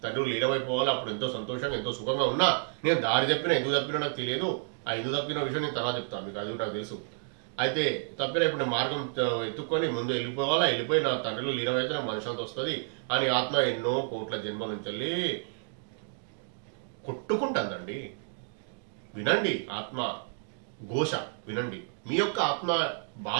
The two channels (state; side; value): silent; left; digital silence